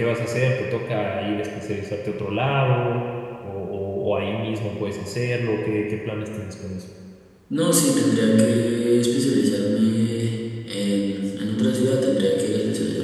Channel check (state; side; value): identical; both; correlation 1.00